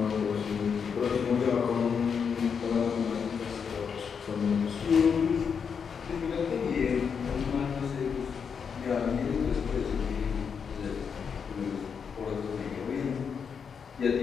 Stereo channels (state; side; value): quieter; right; 6.5 dB